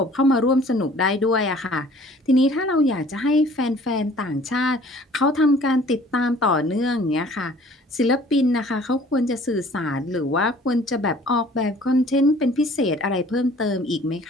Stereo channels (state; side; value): normal; both; correlation 0.52